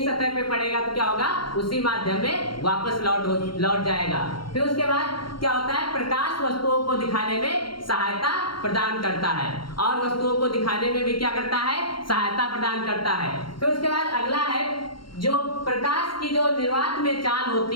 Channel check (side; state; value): right; late; 0.73 ms